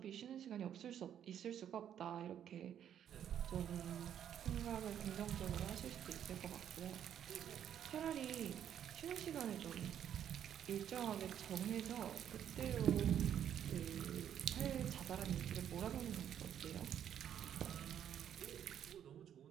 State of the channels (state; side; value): quieter; left; 9.7 dB